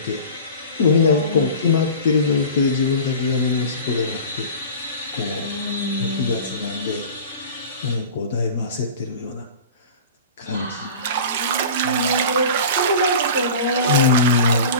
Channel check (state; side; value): inverted; both; correlation -0.37